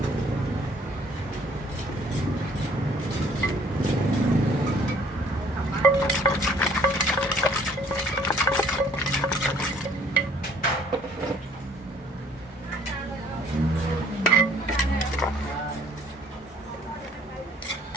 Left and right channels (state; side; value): normal; both; correlation 0.58